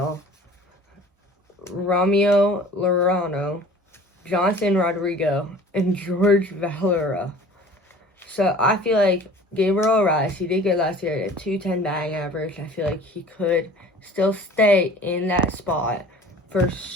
Ramiro Lorano, Jonathan Rodrigo, and George Valera. So I feel like Gabriel Arraez, he did good last year at a 210 batting average. I feel like he could still stay in that spot for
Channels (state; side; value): normal; both; correlation 0.45